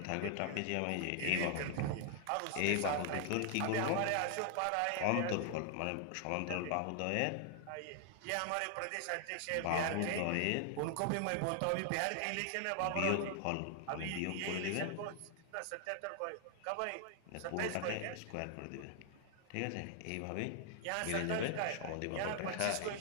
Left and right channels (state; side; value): different; both; correlation 0.00